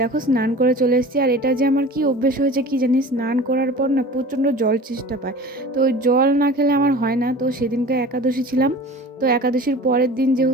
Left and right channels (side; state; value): both; normal; correlation 0.39